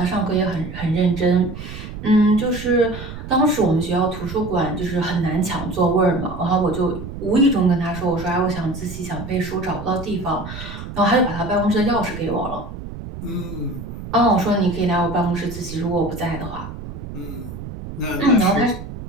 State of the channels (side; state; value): right; noise; rumble, 10 dB below the sound